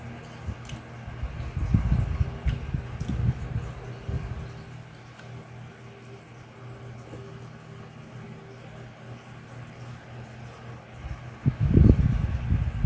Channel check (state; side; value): identical; both; correlation 1.00